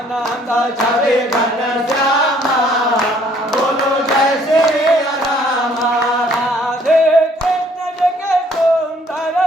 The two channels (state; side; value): normal; both; correlation 0.61